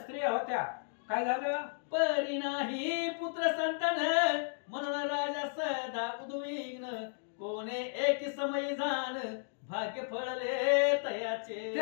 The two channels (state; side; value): silent; right; digital silence